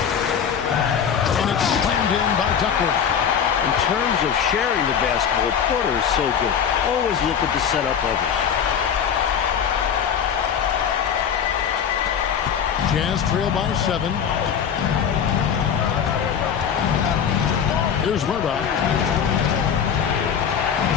And it's slammed in by Duckworth. In terms of sharing the basketball, Porter is so good. Always looking to set up others. Jazz trail by 7. Here's Murdoch.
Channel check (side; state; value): right; quieter; 7.8 dB